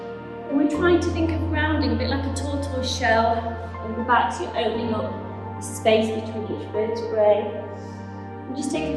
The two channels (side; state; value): both; identical; correlation 1.00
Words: And we're trying to think of rounding, a bit like a tortoise shell on the back, so you're opening up the space between each vertebrae. And just take